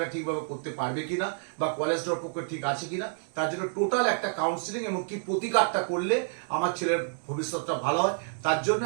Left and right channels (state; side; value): silent; left; digital silence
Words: ঠিকভাবে করতে পারবে কিনা বা কলেজটার পক্ষে ঠিক আছে কিনা, তার জন্য টোটাল একটা কাউন্সিলিং এবং কি প্রতিকারটা করলে আমার ছেলের ভবিষ্যৎটা ভালো হয়, তার জন্য